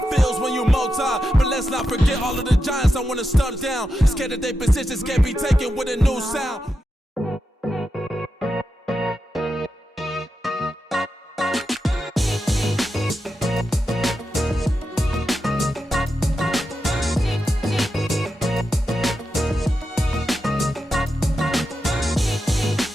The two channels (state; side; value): normal; both; correlation 0.88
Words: feels when you multi. But let's not forget all of the giants I want to start down. Scared that their positions can't be taken with a new sound.